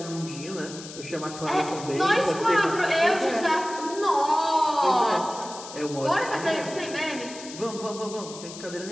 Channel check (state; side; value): noise; left; hiss, 13 dB below the sound